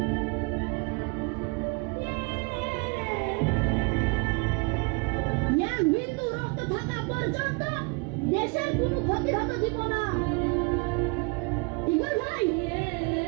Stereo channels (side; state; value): left; quieter; 30.9 dB